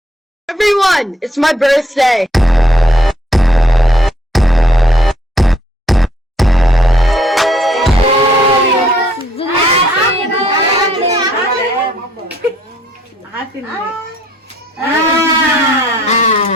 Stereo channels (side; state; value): both; normal; correlation 0.66